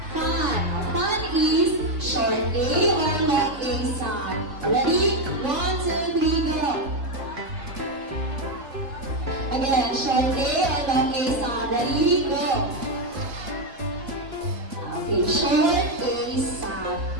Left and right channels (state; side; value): late; left; 3.4 ms